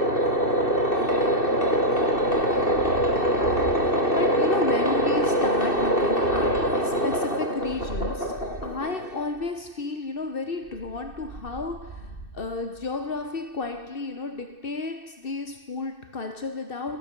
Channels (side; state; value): right; late; 2.6 ms